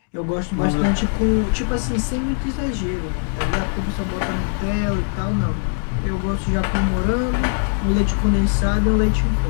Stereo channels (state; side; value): silent; right; 61 dB below the other